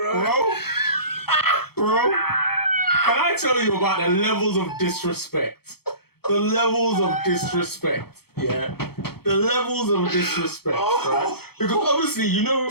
Bro, can I tell you about the levels of disrespect? The levels of disrespect, yeah? The levels of disrespect, right? Because obviously, you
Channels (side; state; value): right; late; 0.96 ms